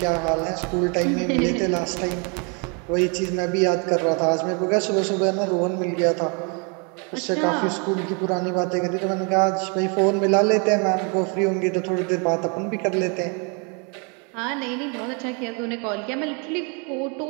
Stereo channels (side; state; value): left; quieter; 34.9 dB